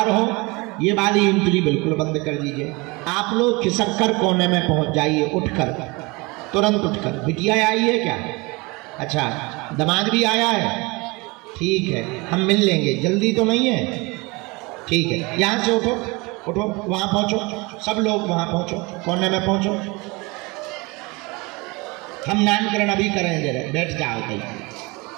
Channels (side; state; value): left; quieter; 25.8 dB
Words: हो, ये वाली एंट्री बिल्कुल बंद कर दीजिए। आप लोग खिसक कर कोने में पहुँच जाइए, उठकर, तुरंत उठकर। बिटिया आई है क्या? अच्छा, दामाद भी आया है? ठीक है, हम मिल लेंगे। जल्दी तो नहीं है? ठीक है, यहाँ से उठो, उठो, वहाँ पहुँचो, सब लोग वहाँ पहुँचो, कोने में पहुँचो। हम नामकरण अभी करेंगे, बैठ जाओ। कहीं